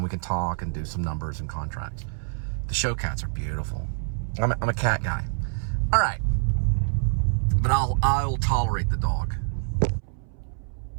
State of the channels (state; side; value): silent; left; 61 dB below the other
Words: we can talk and do some numbers and contracts. The show cats are beautiful. I'm a cat guy. All right. But I'll tolerate the dog.